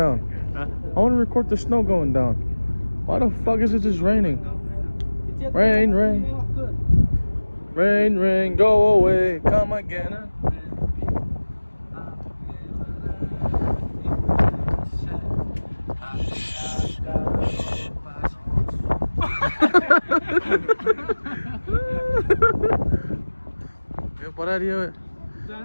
I want to record the snow going down. Why the fuck is it just raining? Rain, rain. Rain, rain, go away. Come again. Para Dios.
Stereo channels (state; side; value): inverted; both; correlation -1.00